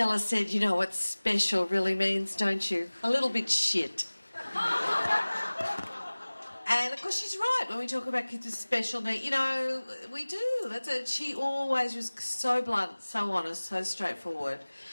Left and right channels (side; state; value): both; inverted; correlation -1.00